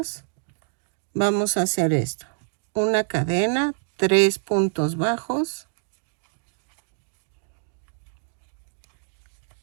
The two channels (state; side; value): silent; left; digital silence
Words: vamos a hacer esto. Una cadena, 3 puntos bajos,